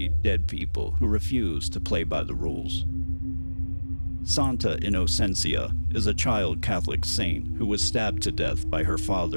dead people who refuse to play by the rules. Santa Innocencia is a child Catholic saint who was stabbed to death by her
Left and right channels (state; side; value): inverted; both; correlation -1.00